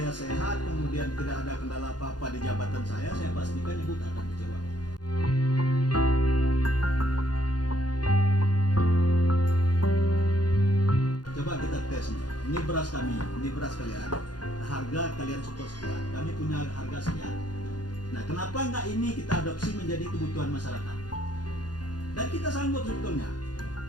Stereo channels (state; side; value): late; right; 0.69 ms